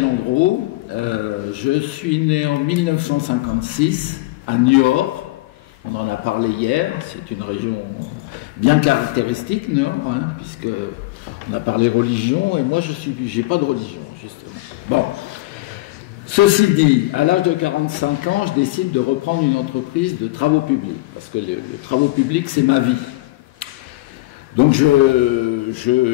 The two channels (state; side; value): quieter; right; 20.1 dB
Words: Andreau. Je suis né en 1956 à Niort. On en a parlé hier. C'est une région bien caractéristique, Niort, puisque on a parlé religion et moi j'ai pas de religion justement. Bon. Ceci dit, à l'âge de 45 ans, je décide de reprendre une entreprise de travaux publics parce que les travaux publics c'est ma vie. Donc